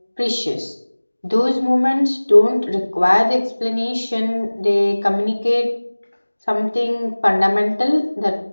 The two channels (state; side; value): inverted; both; correlation -1.00